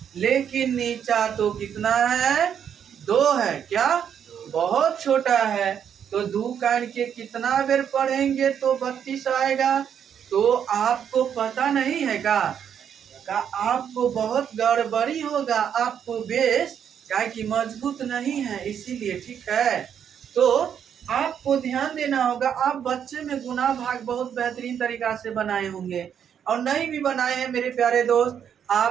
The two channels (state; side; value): quieter; left; 8.4 dB